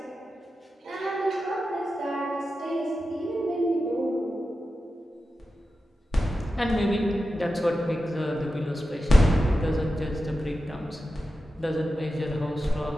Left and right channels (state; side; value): normal; both; correlation 0.92